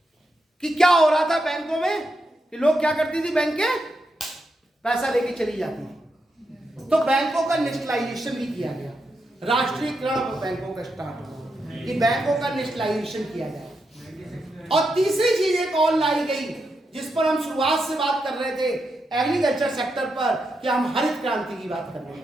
क्या हो रहा था बैंकों में कि लोग क्या करती थी, बैंकें पैसा लेके चली जाती थी। तो बैंकों का नेशनलाइजेशन भी किया गया, राष्ट्रीयकरण बैंकों का स्टार्ट हुआ कि बैंकों का नेशनलाइजेशन किया जाए। और तीसरी चीज एक और लाई गई जिस पर हम शुरुआत से बात कर रहे थे, एग्रीकल्चर सेक्टर पर, कि हम हरित क्रांति की बात कर रहे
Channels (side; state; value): both; normal; correlation 0.85